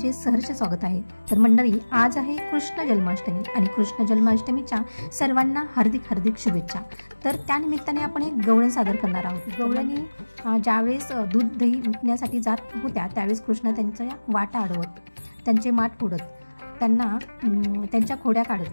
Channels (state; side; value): inverted; both; correlation -1.00